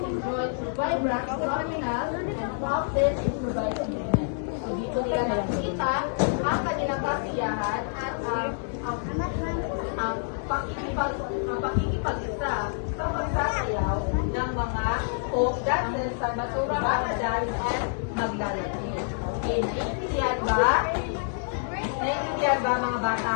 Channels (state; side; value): silent; right; digital silence